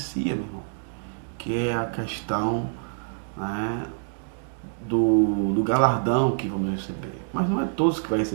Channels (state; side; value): silent; left; digital silence